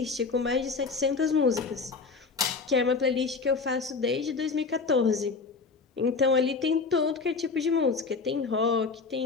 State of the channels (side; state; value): right; quieter; 4.5 dB